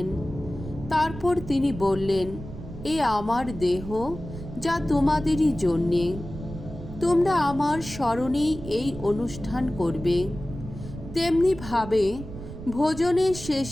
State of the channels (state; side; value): noise; right; rumble, 12 dB below the sound